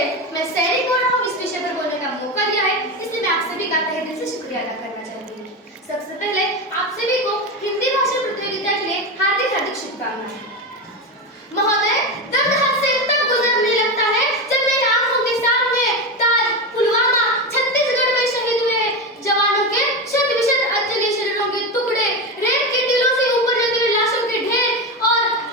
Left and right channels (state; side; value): normal; both; correlation 0.17